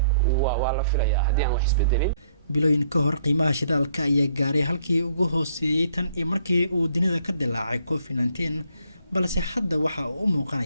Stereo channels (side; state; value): both; inverted; correlation -0.67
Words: waa la filayaa haddii aan wax isbedelin bilooyin ka hor qiimaha shidaalka ayaa gaaray halkii ugu hooseeyay tan iyo markii uu dunida ka dilaacay COVID-19 balse hadda waxa uu u